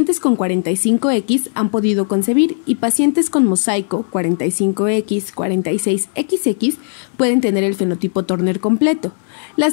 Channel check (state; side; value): silent; right; digital silence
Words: con 45X han podido concebir y pacientes con mosaico 45X, 46XX pueden tener el fenotipo Turner completo.